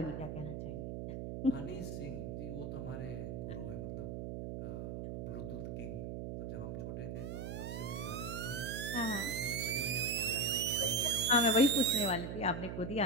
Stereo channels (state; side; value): noise; right; hum, 5 dB below the sound